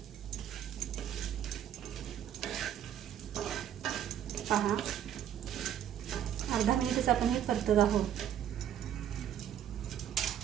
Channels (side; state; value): left; quieter; 10.2 dB